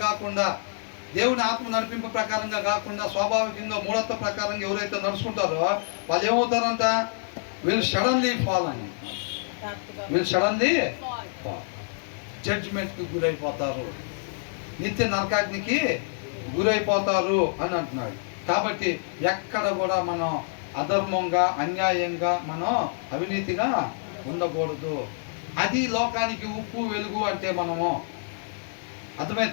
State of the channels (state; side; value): silent; right; digital silence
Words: కాకుండా, దేవుని ఆత్మ నడిపింపు ప్రకారంగా కాకుండా, స్వాభావికంగా మూఢత్వ ప్రకారంగా ఎవరైతే నడుచుకుంటారో వాళ్ళు ఏమవుతారంట? వీళ్ళు సడన్లీ ఫాల్ అని, వీళ్ళు సడన్లీ జడ్జిమెంట్కి గురైపోతారు, నిత్య నరకాగ్నికి గురైపోతారు అని అంటున్నాడు. కాబట్టి ఎక్కడ కూడా మనం అధర్మంగా, అన్యాయంగా, మనం అవినీతిగా ఉండకూడదు. అది లోకానికి ఉప్పు వెలుగు అంటే మనము.